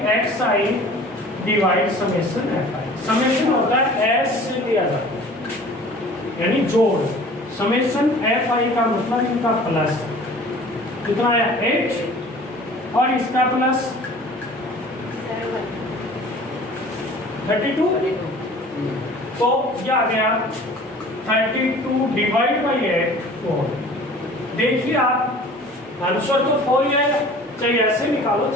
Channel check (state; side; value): normal; both; correlation 0.46